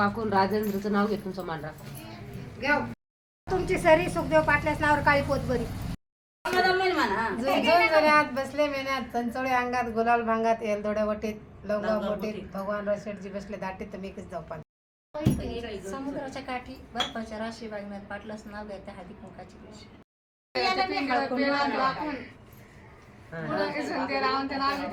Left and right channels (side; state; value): both; identical; correlation 1.00